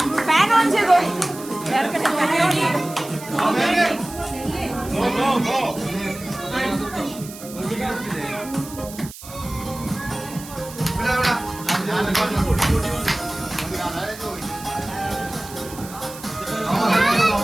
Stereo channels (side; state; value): right; noise; hiss, 15 dB below the sound